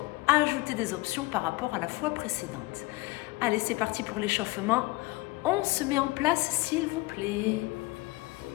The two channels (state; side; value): quieter; right; 21.8 dB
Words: ajouter des options par rapport à la fois précédente. Allez, c'est parti pour l'échauffement. On se met en place, s'il vous plaît.